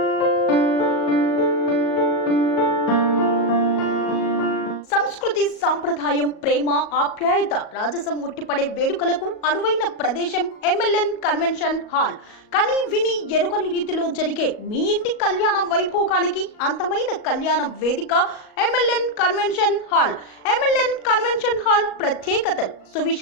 సంస్కృతి, సాంప్రదాయం, ప్రేమ, ఆప్యాయత, రాజసం ఉట్టిపడే వేడుకలకు అనువైన ప్రదేశం MLN కన్వెన్షన్ హాల్. కని విని ఎరుగని రీతిలో జరిగే మీ ఇంటి కళ్యాణ వైభోగానికి అందమైన కళ్యాణ వేదిక MLN convention hall. MLN convention hall ప్రత్యేకతలు:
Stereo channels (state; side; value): late; right; 38 ms